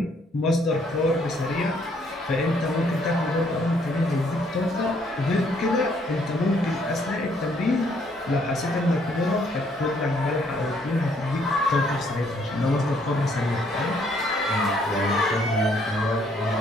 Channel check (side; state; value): both; normal; correlation 0.67